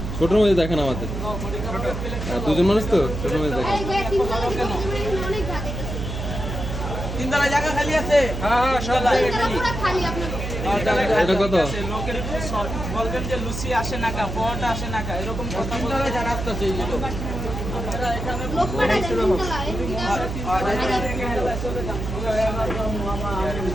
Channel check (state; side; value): noise; right; hum, 5 dB below the sound